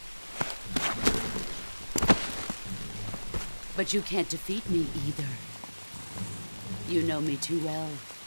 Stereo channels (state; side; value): inverted; both; correlation -1.00